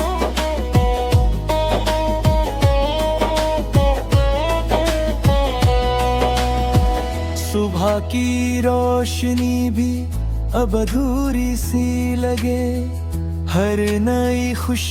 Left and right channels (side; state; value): both; identical; correlation 1.00